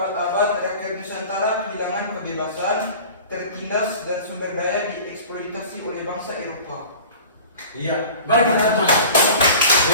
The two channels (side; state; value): both; inverted; correlation -0.41